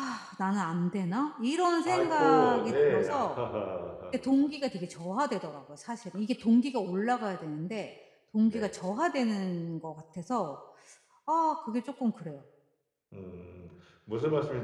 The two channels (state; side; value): identical; both; correlation 1.00